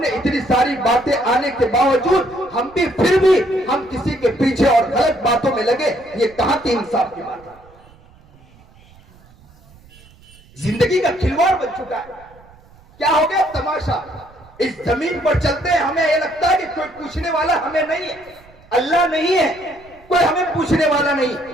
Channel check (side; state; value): right; noise; rumble, 26 dB below the sound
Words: इतनी सारी बातें आने के बावजूद हम भी फिर भी हम किसी के पीछे और गलत बातों में लगे, ये कहां की इंसाफ की बात है? जिंदगी का खिलवाड़ बन चुका है। क्या हो गया तमाशा? इस जमीन पर चलते हैं, हमें यह लगता है कि कोई पूछने वाला हमें नहीं है, अल्लाह नहीं है, कोई हमें पूछने वाला नहीं,